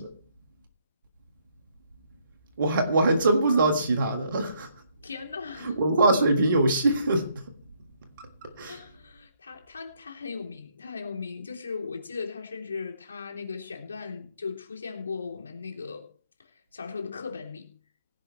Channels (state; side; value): inverted; both; correlation -0.70